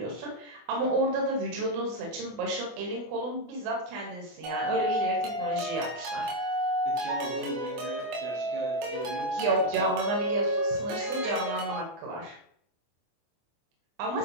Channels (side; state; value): left; late; 24 ms